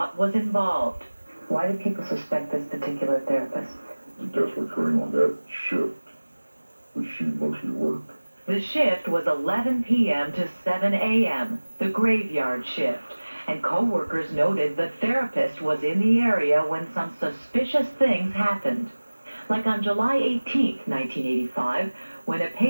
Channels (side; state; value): both; inverted; correlation -1.00